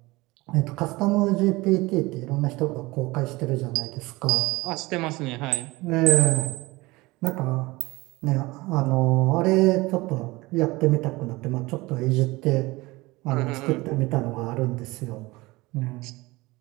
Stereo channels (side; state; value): left; quieter; 21.6 dB